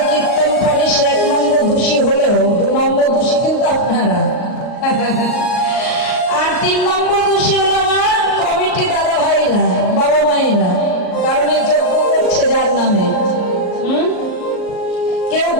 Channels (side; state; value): right; late; 38 ms